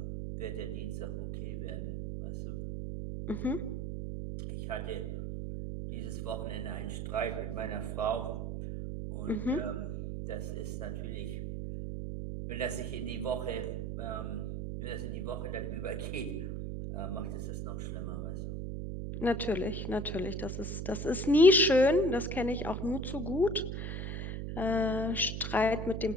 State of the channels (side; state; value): right; noise; hum, 4 dB below the sound